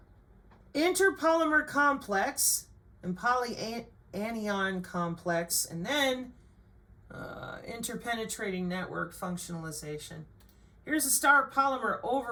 interpolymer complex, and polyanion complex, and then interpenetrating network functionalization. Here's a star polymer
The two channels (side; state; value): both; identical; correlation 1.00